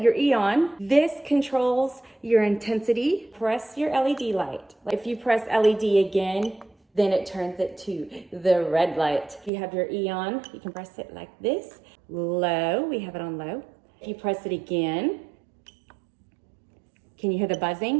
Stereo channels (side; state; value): left; drops out; at 9.5 s